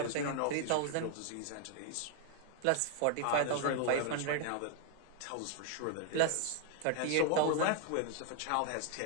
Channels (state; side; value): different; both; correlation 0.00